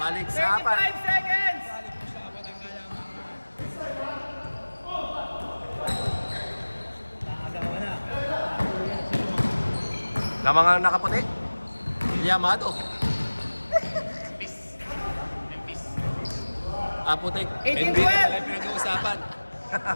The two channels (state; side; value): inverted; both; correlation -1.00